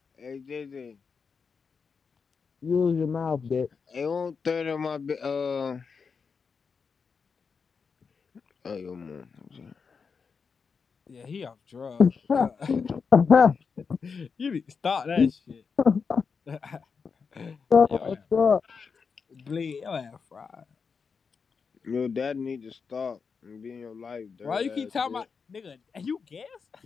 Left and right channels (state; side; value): quieter; right; 5.5 dB